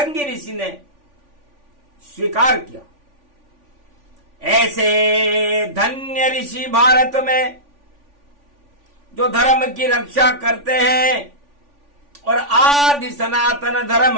ऋषि ने स्वीकार किया। ऐसे धन्य ऋषि भारत में जो धर्म की रक्षा करते हैं और आदि सनातन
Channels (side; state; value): left; late; 3.5 ms